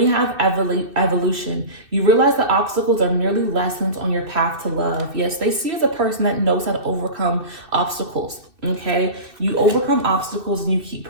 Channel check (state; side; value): late; left; 2.6 ms